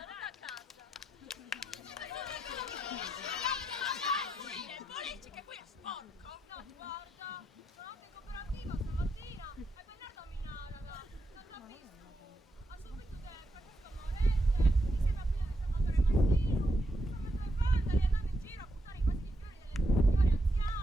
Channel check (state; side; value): normal; both; correlation 0.82